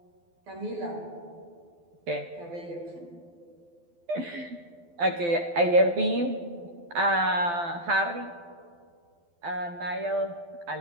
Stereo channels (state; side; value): late; left; 12 ms